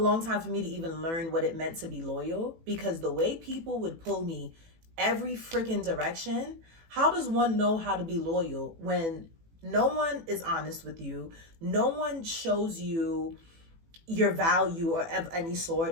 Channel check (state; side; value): late; left; 18 ms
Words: time for me to even learn what it meant to be loyal, because the way people would pull me every freaking direction, how does one know how to be loyal when no one is honest with you? No one shows you your value or of any